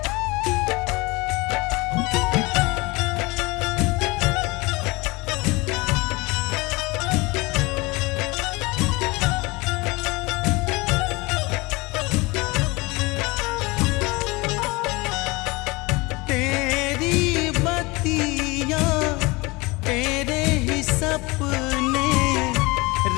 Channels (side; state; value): right; quieter; 24.1 dB